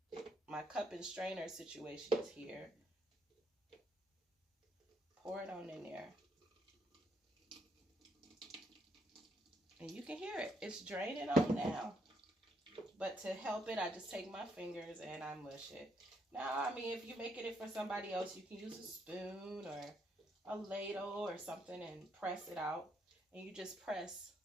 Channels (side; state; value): both; normal; correlation 0.73